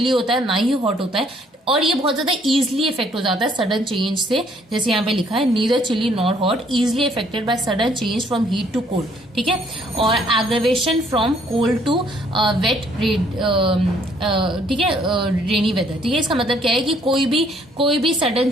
होता है ना ही हॉट होता है, और ये बहुत ज्यादा इजीली इफेक्ट हो जाता है सडन चेंज से, जैसे यहाँ पे लिखा है neither chilly nor hot, easily affected by sudden change from heat to cold. ठीक है, और aggravation from cold to wet, ठीक है, रेनी वेदर। ठीक है, इसका मतलब क्या है कि कोई भी सडन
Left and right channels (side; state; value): both; normal; correlation 0.64